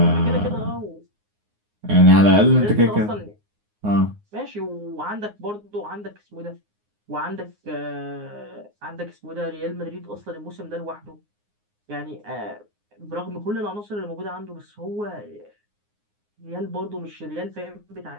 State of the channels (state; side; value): late; left; 9.6 ms